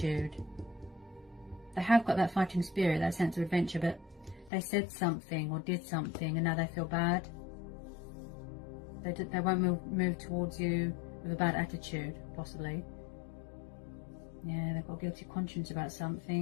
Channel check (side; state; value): right; drops out; at 4.5 s